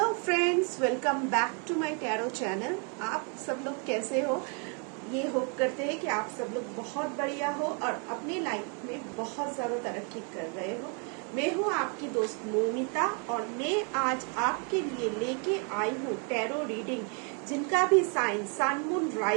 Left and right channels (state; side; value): quieter; left; 38.5 dB